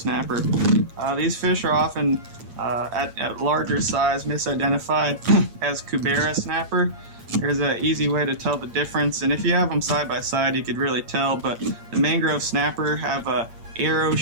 These fish are often at larger size, misidentified as Cubera snapper. There's an easy way to tell the difference, and if you have them side by side, you could really tell. But the mangrove snapper have a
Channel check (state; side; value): late; left; 8.7 ms